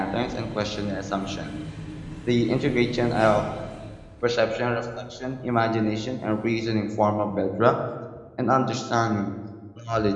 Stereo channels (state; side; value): identical; both; correlation 1.00